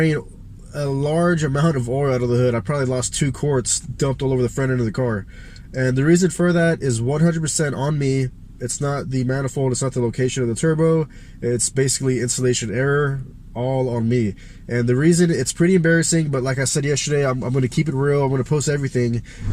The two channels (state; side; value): identical; both; correlation 1.00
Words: a large amount of oil out of the hood. I probably lost 2 quarts dumped all over the front end of the car. And the reason for that is 100% on me. It's not the manifold, it's not the location of the turbo. It's basically installation error, all on me. And the reason, it's pretty embarrassing, but like I said yesterday, I'm going to keep it real. I'm going to post everything.